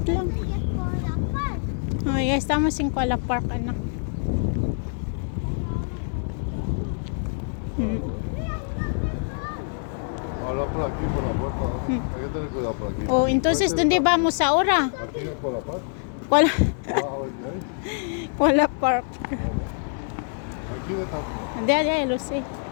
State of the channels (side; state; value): right; silent; 58 dB below the other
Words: lang. Oh, ya estamos en Kuala Park, anak. Habla por aquí, por la puerta. Hay que tener cuidado por aquí. Oh, entonces, ¿dónde vamos ahora? Aquí es por la paz. Kuala, Ah, ok. Kuala Park. Aquí de tanto. Ya, lo sé.